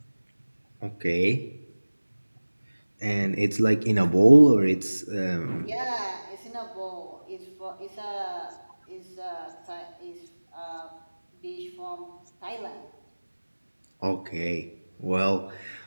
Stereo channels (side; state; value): both; inverted; correlation -1.00